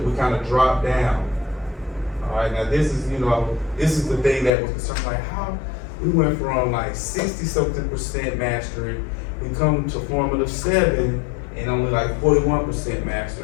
we kind of dropped down. All right, now this is the thing that was concerned, like how we went from like 60-something% mastery, we come to formative 7 and only like 41%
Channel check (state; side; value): drops out; right; at 4.5 s